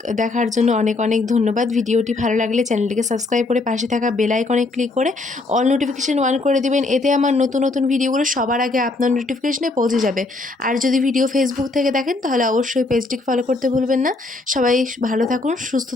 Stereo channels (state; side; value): quieter; right; 3.3 dB